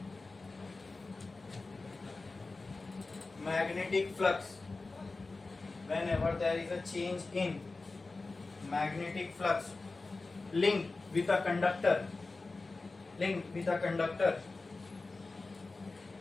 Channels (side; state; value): right; quieter; 3.6 dB